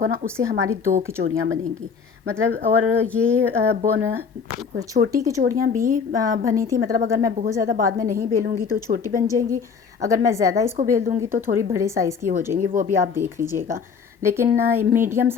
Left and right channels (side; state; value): right; quieter; 6.0 dB